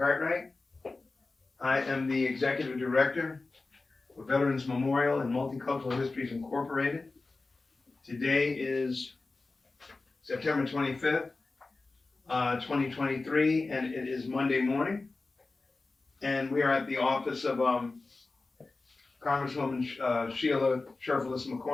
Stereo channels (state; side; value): quieter; right; 3.6 dB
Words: I am the Executive Director for Veterans Memorial and Multicultural Histories Incorporated. Today is September 25th, 2023, and it is Monday morning. And we are at the office of Congresswoman Sheila Sherfullis